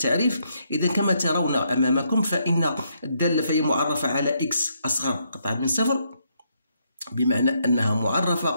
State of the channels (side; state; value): both; inverted; correlation -0.76